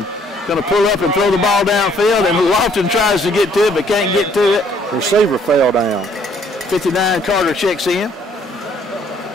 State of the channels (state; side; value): normal; both; correlation 0.64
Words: going to pull up and throw the ball downfield, and Lofton tries to get to it but can't get to it. Receiver fell down. 59, Carter checks in.